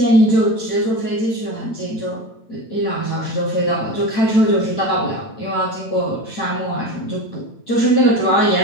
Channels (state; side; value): late; right; 9.0 ms